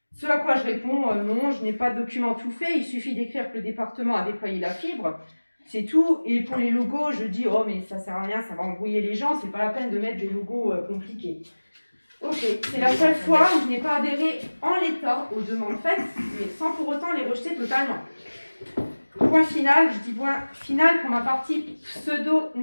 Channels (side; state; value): both; inverted; correlation -1.00